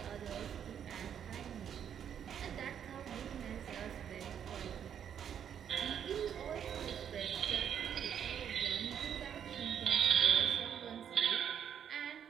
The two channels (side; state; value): left; quieter; 8.7 dB